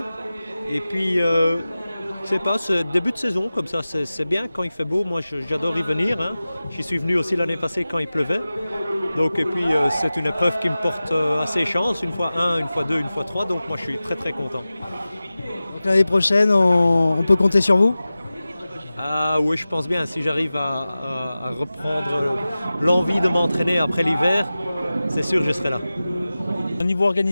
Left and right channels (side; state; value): both; inverted; correlation -0.96